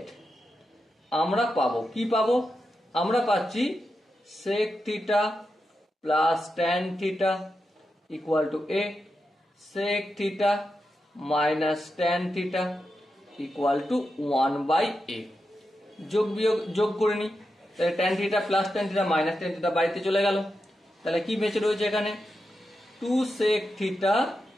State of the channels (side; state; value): both; normal; correlation 0.88